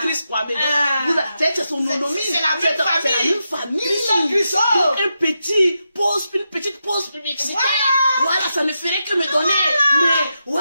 Kwame. C'est son nom. C'est la même famille. Chris. Donc, une petite pause publicitaire. Voilà, ça ne ferait que me donner. Mais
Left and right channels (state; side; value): inverted; both; correlation -0.87